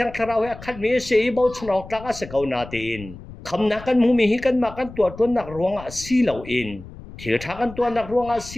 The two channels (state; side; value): noise; left; rumble, 16 dB below the sound